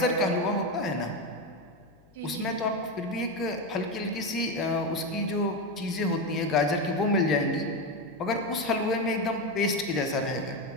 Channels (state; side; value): noise; left; hum, 29 dB below the sound